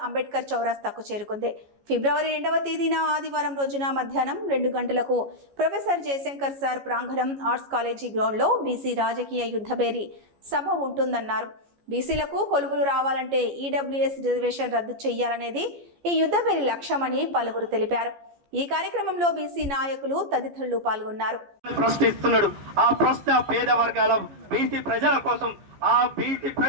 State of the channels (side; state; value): left; late; 14 ms